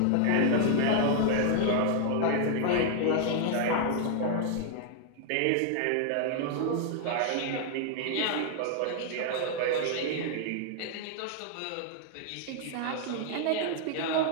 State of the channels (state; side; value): different; both; correlation 0.00